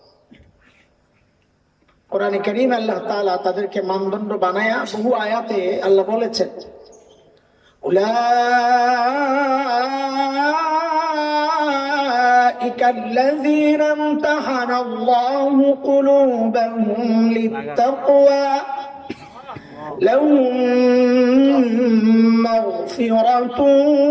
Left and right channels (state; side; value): identical; both; correlation 1.00